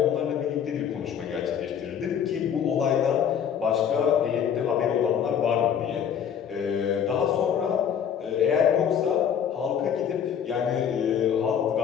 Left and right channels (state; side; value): quieter; right; 8.3 dB